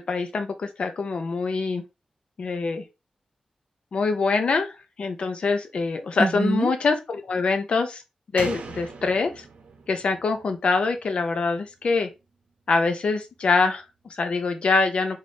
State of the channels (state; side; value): quieter; right; 3.4 dB